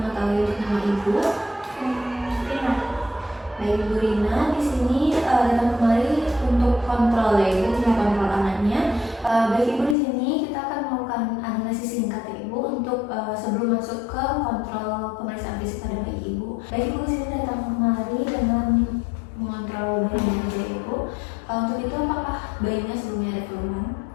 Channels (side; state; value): right; drops out; at 10.0 s